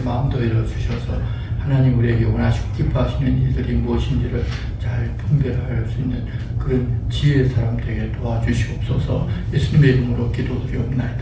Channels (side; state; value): both; identical; correlation 1.00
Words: 마음도 열어주셔서 하나님 우리에게 원하시고 기뻐하시는 일들이 무엇인지를 잘 분별할 수 있는 그런 지혜의 사람 되게 도와주시옵소서. 예수님의 이름으로